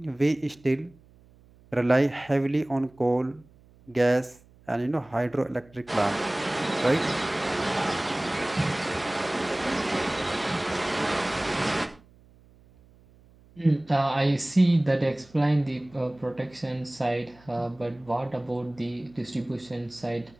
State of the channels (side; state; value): right; noise; hum, 27 dB below the sound